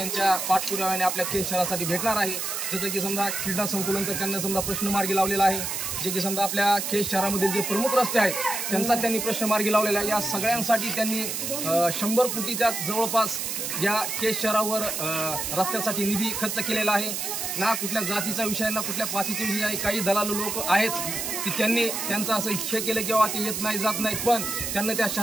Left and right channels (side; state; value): right; noise; hiss, 3 dB below the sound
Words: पाठपुराव्याने आपल्या केज शहरासाठी भेटणार आहे. जसं की समजा क्रीडा संकुलनचा त्यांना समजा प्रश्न मार्गी लावलेला आहे. जे की समजा आपल्या केज शहरामधील जे प्रमुख रस्ते आहेत त्यांचा त्यांनी प्रश्न मार्गी लावलेला आहे. या सगळ्यांसाठी त्यांनी 100 कोटीच्या जवळपास या केज शहरावर रस्त्यासाठी निधी खर्च केलेला आहे. ना कुठल्या जातीचा विषय ना कुठल्या पातीचा विषय आहे. काही दलालू लोक आहेत की त्यांनी त्यांचं असं हे केलं किंवा ते येत नाही जात नाहीत, पण त्यांना त्या